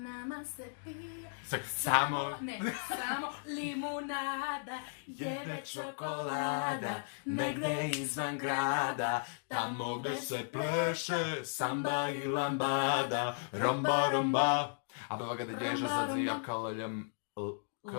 se pije Samo samo limunada, jede čokolada, negde izvan grada, tamo gde se pleše samba i lambada, romba, romba. Abava ga dođeže Romba, z, z, j, romba. k, l, j, k,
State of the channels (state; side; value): silent; right; digital silence